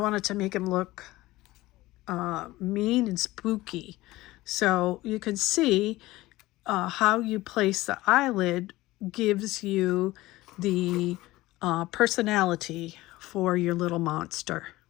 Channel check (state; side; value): quieter; right; 18.3 dB